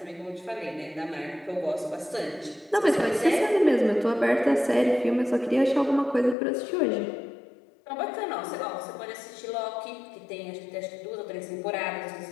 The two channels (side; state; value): right; drops out; at 6.4 s